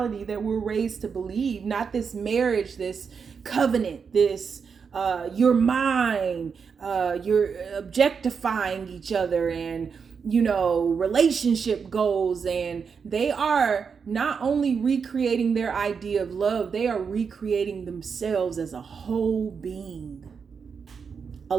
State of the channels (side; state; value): left; quieter; 6.0 dB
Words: that we're raised to believe, not this marriage, this covenant, this you're mine, you're objectifying each other and relationship goals. And they are not only recreating their idea of love, they are recreating themselves as a whole being,